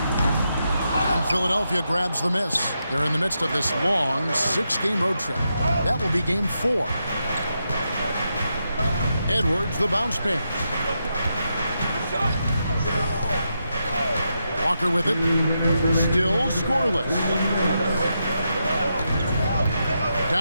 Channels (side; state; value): both; inverted; correlation -0.84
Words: Philadelphia grabs the miss. They're in the midst of this long 6-game road trip. That will be game 4. Edwards, the bounce pass. Walker with it. Still scoreless.